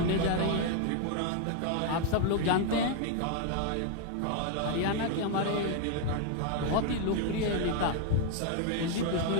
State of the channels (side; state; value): both; different; correlation 0.00